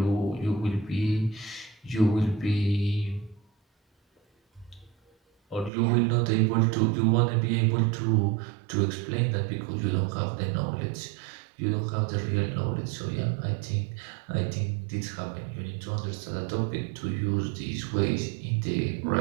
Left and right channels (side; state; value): left; drops out; at 5.7 s